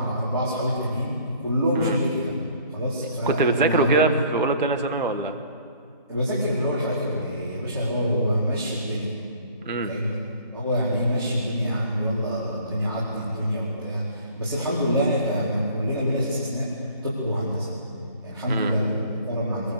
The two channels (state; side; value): inverted; both; correlation -0.55